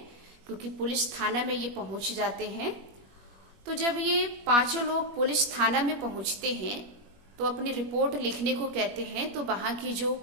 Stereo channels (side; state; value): left; late; 21 ms